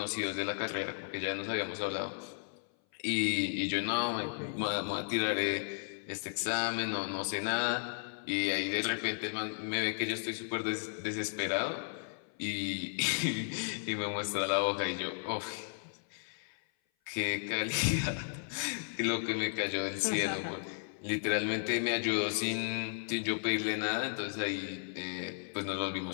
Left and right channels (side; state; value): right; silent; 55 dB below the other